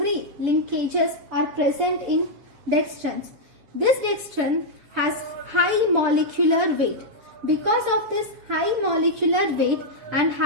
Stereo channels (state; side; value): late; left; 6.9 ms